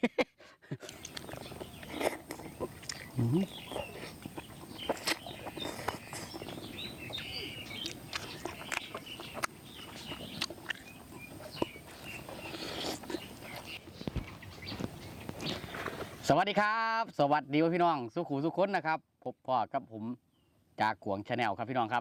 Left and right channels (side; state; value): both; identical; correlation 1.00